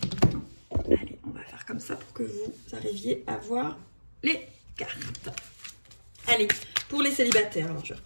Allez, on va faire comme ça pour que vous arriviez à voir les cartes. Allez, pour les célibataires, alors je vais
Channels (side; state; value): both; inverted; correlation -1.00